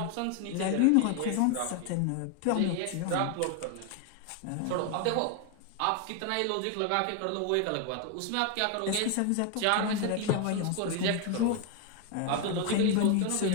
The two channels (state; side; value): different; both; correlation 0.01